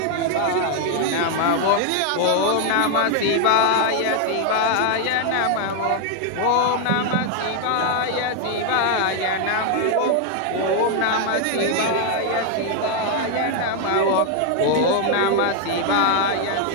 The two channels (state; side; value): different; both; correlation 0.00